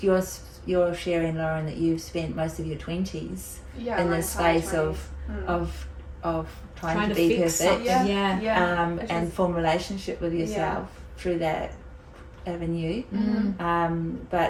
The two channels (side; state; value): both; identical; correlation 1.00